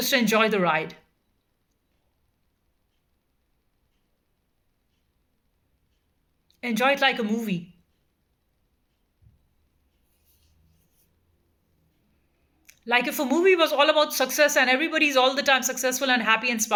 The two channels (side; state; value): both; identical; correlation 1.00